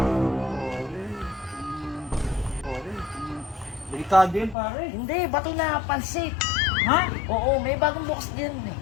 Delikado yun pare. Hindi, bato na pansit. Ha? Oo, may bagong bukas din eh.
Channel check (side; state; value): right; drops out; at 4.5 s